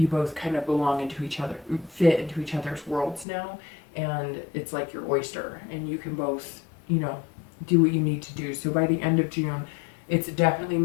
both kind of belong into each other, fit into each other's worlds now. And it's like your oyster, and you can both, you know, do what you need to do. So by the end of June, it's definitely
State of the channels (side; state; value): right; drops out; at 3.2 s